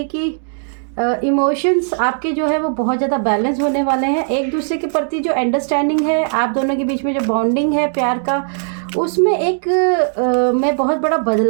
कि इमोशंस आपके जो है वो बहुत ज़्यादा बैलेंस होने वाले हैं। एक दूसरे के प्रति जो अंडरस्टैंडिंग है आप दोनों के बीच में जो बॉन्डिंग है प्यार का, उसमें एक मैं बहुत बड़ा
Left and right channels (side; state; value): left; silent; digital silence